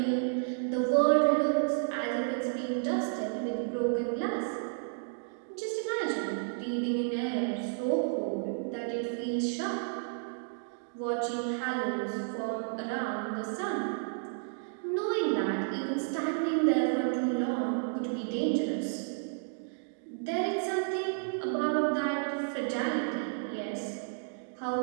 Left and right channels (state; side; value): silent; left; digital silence